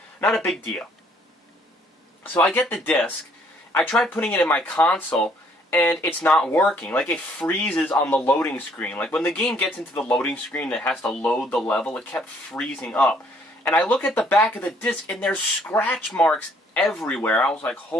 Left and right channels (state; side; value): normal; both; correlation 0.64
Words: a big deal. So I get the disc. I tried putting it in my console, and it's not working. Like, it freezes on the loading screen. Like, when the game gets into the loading screen that has to load the level, it kept freezing up. And I look at the back of the disc, and there's scratch marks everywhere. I was like,